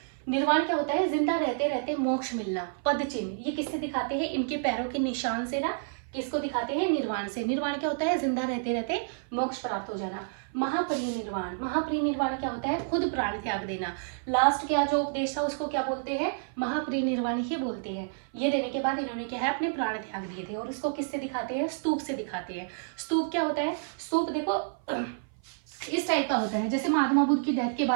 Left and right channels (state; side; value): silent; left; 56 dB below the other